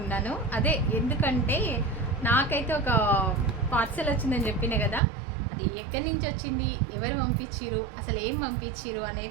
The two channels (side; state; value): left; drops out; at 5.0 s